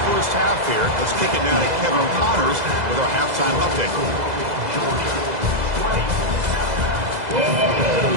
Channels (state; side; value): late; left; 2.0 ms